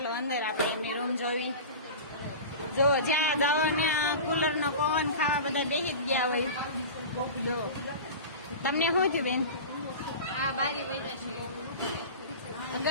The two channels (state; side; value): inverted; both; correlation -0.31